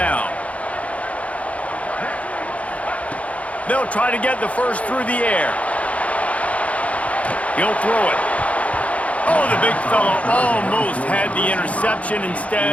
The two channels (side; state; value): right; late; 0.066 ms